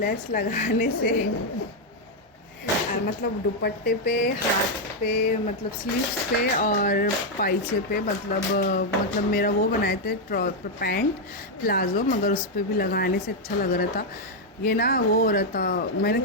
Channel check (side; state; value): both; normal; correlation 0.00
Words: लगाने से मतलब दुपट्टे पे, हाथ पे, मतलब स्लीव्स पे और पाइचे पे, मतलब मेरा वो बनाए थे पैंट प्लाज़ो, मगर उस पर भी लगाने से अच्छा लग रहा था। ये ना वो हो रहा था, मैंने